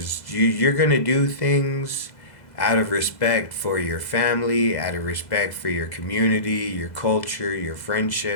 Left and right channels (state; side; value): late; right; 2.0 ms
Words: you're gonna do things out of respect for your family, out of respect for your community, your culture, your